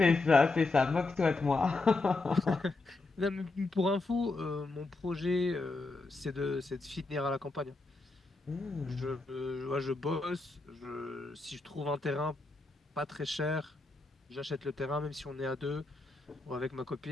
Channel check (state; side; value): quieter; right; 3.4 dB